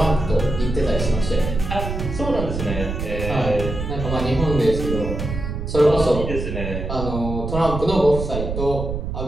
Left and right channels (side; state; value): right; noise; rumble, 4 dB below the sound